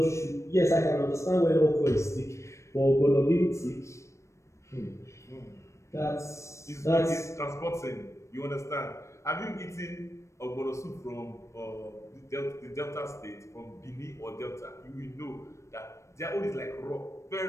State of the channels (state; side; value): late; right; 0.14 ms